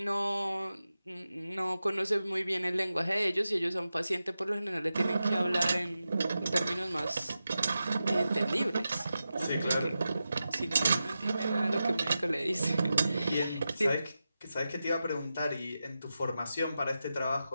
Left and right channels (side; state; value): both; inverted; correlation -0.92